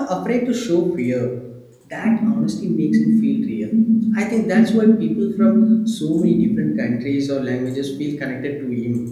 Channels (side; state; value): both; identical; correlation 1.00